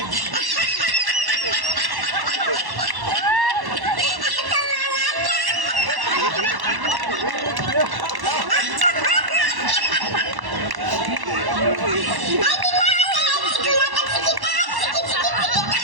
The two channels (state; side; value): late; left; 1.1 ms